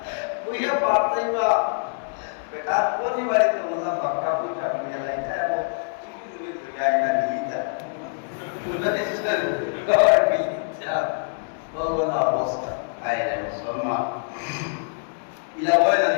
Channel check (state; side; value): silent; right; digital silence